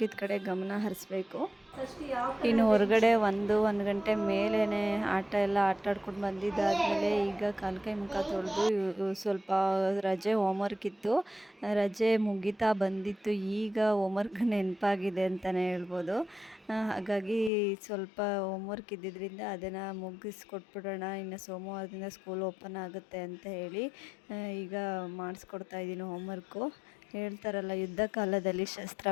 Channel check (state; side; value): drops out; right; at 17.5 s